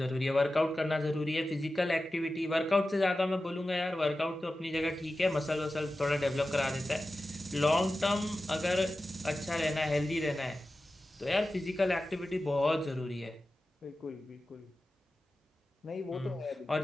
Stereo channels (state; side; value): normal; both; correlation 0.94